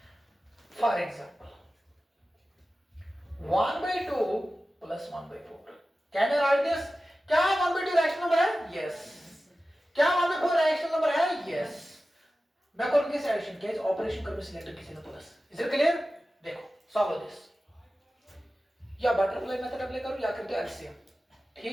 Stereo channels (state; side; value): normal; both; correlation 0.95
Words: फॉर एग्जांपल 1/2 plus 1/4. Can you write this? क्या 1/2 रैशनल नंबर है? Yes. क्या 1/4 रैशनल नंबर है? Yes. मैं करूंगी इस एडिशन के ऑपरेशन करके सिलेक्ट किसी ने प्लस. Is it clear? देखो सॉल्व दिस. या बटरफ्लाई मेथड अप्लाई करो या करते एलसीएम.